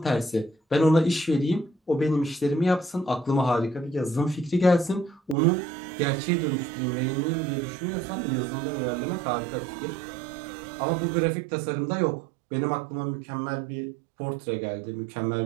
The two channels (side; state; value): left; drops out; at 5.4 s